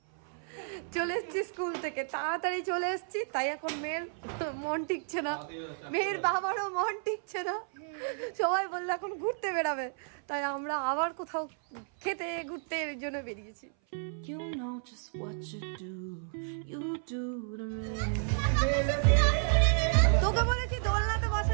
চলে এসছি স্কুল থেকে, তাড়াতাড়ি চলে এসছি, তাই এখন মেয়ের মন টিকছে না, মেয়ের বাবারও মন টিকছে না। সবাই বললো এখন ঘুরতে বেরাবে, তাই আমরা আবার কোথাও খেতে ঘুরতে এর জন্য বেরিয়েছি। তোকে বলেছি দোলনাতে বসা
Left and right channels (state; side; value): silent; left; 56 dB below the other